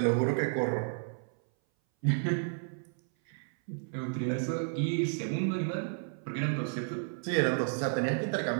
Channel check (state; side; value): silent; left; 56 dB below the other